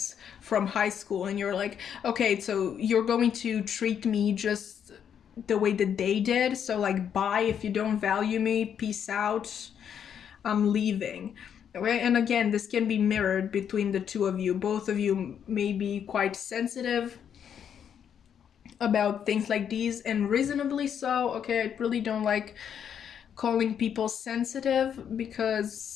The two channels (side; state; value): right; quieter; 8.4 dB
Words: from high school, and you're like, okay, so you're going to treat me just the way that they did, so like, bye. If you don't value me, peace out, I'm leaving. Okay, and again, this can be mirrored between the two of you. Both of you may be quite sensitive about things like these, and reasonably so. Okay, I really don't like calling people sensitive